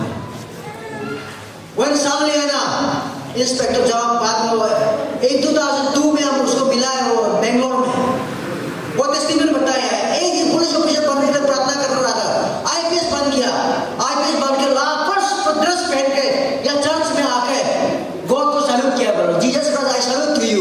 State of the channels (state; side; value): identical; both; correlation 1.00